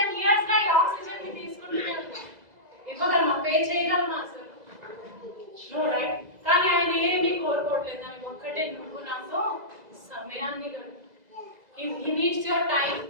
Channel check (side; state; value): left; late; 2.0 ms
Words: ఇయర్స్ గా ఈ ఆక్సిజన్ ని తీసుకుంటూనే ఉంటాం. ఇవ్వగలమా, పే చేయగలమా అసలు? No, right. కానీ ఆయన ఏమీ కోరుకోవట్లేదు, దానికి ఒక్కటే, నువ్వు నాతో సమయాన్ని హీ నీడ్స్ యువర్ టైం.